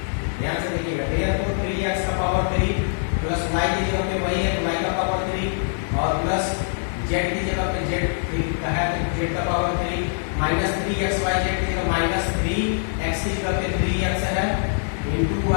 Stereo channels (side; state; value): right; silent; 63 dB below the other